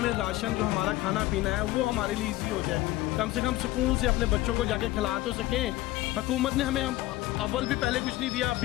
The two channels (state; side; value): quieter; right; 17.2 dB